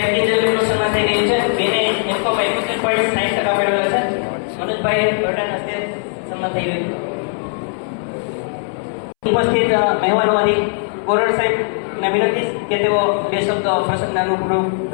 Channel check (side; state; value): right; silent; 67 dB below the other